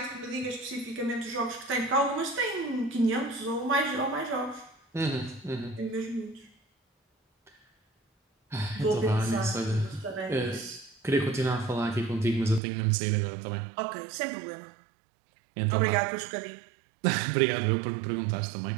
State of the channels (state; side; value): drops out; left; at 12.6 s